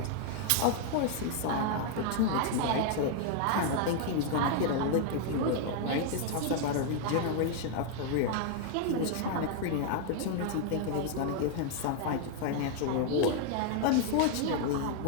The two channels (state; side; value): different; both; correlation 0.00